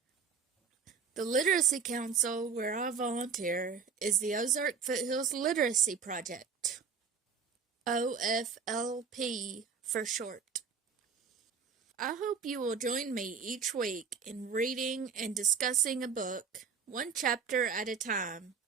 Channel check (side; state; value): left; quieter; 5.8 dB